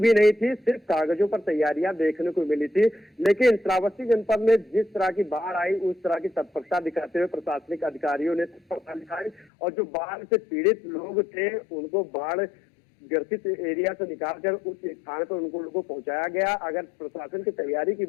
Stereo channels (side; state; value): right; drops out; at 9.5 s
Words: नहीं थी, सिर्फ कागजों पर तैयारियां देखने को मिली थी। लेकिन श्रावस्ती जनपद में जिस तरह की बाढ़ आई उस तरह की तत्परता दिखाते हुए प्रशासनिक अधिकारियों ने तत्परता दिखाई और जो बाढ़ से पीड़ित लोग थे उनको बाढ़ ग्रसित एरिया से निकालकर उस स्थान पर उनको लोगों को पहुंचाया गया। अगर प्रशासन की तैयारी की